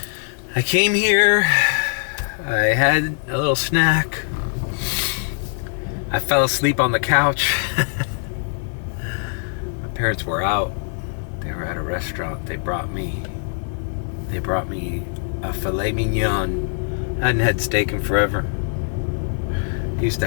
I came here, I had a little snack, I fell asleep on the couch. My parents were out, they were at a restaurant, they brought me a Filet Mignon. I hadn't had steak in forever. I used to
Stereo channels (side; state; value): right; silent; digital silence